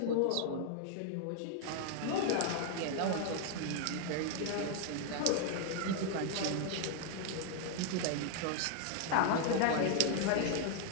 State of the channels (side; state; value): both; different; correlation 0.00